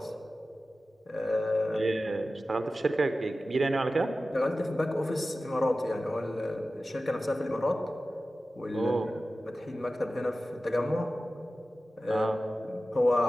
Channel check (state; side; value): normal; both; correlation 0.95